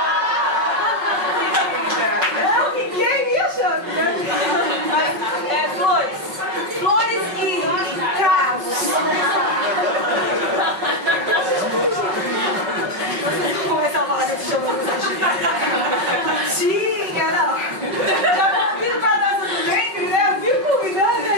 Não, quem me achou? Flores e cravos. Vocês vão começar a falar desse show. Tinha, não. Já convido pra dança do ventre, né? Eu fico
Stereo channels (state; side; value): late; left; 5.3 ms